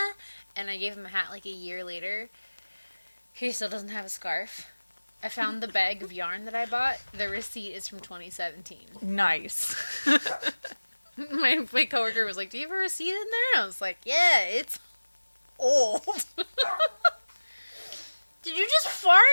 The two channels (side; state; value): both; inverted; correlation -1.00